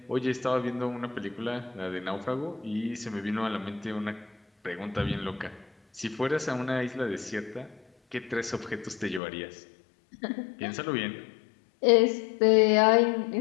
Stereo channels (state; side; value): drops out; right; at 9.2 s